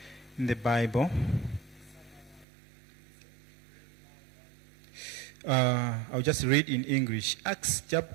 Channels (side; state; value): left; drops out; at 2.5 s